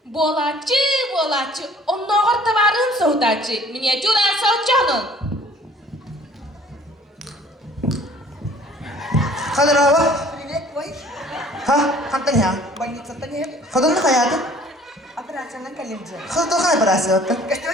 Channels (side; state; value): both; normal; correlation 0.54